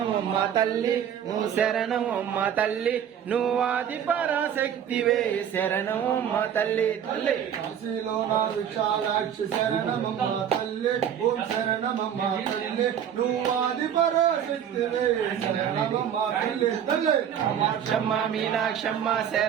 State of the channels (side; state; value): left; quieter; 9.1 dB